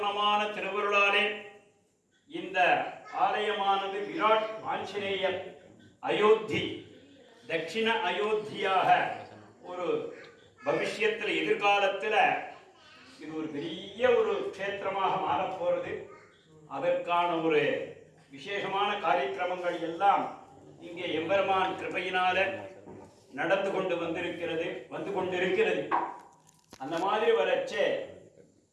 திருவருளாலே இந்த ஆலயமானது விராட் ஆஞ்சநேயர் அயோத்தி தட்சிண அயோத்தியாக ஒரு பவிஷ்யத்தில் எதிர்காலத்தில் இது ஒரு பெரிய ஒரு க்ஷேத்திரமாக மாறப்போகிறது. அதற்கான ஒரு விசேஷமான காரியக்கிரமங்கள் எல்லாம் இங்கே எம்பெருமான் கிருபையினால நடந்து கொண்டிருக்கிறது. அந்த மாதிரி வரச்சே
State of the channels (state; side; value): identical; both; correlation 1.00